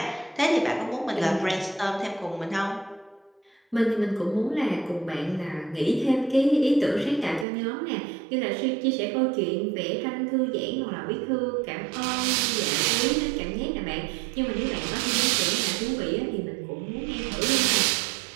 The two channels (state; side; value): drops out; left; at 7.5 s